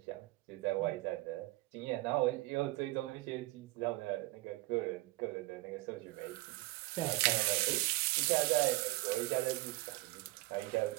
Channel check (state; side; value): quieter; left; 20.8 dB